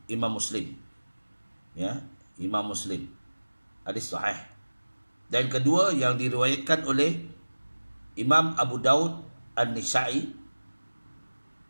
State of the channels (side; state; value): both; inverted; correlation -1.00